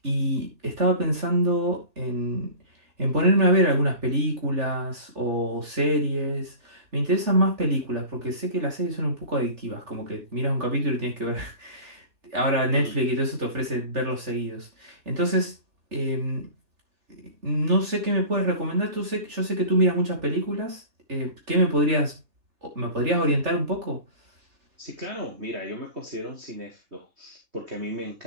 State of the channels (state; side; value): late; left; 3.4 ms